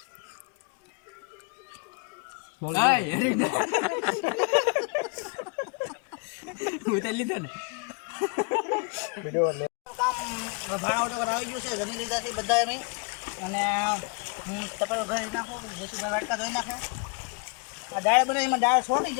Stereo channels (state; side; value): quieter; right; 34.6 dB